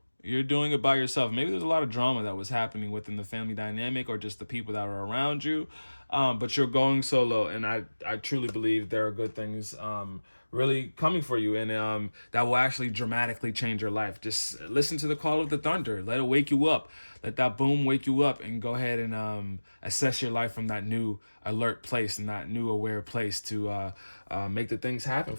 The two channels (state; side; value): inverted; both; correlation -1.00